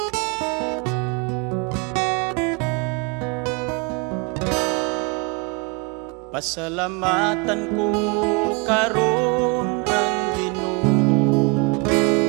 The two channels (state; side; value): quieter; left; 30.4 dB